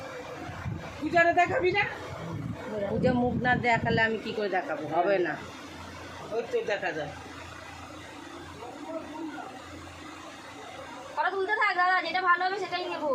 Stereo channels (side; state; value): both; identical; correlation 1.00